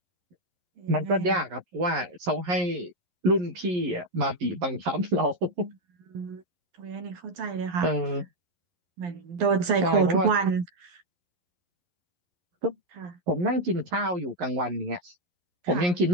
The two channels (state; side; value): late; left; 11 ms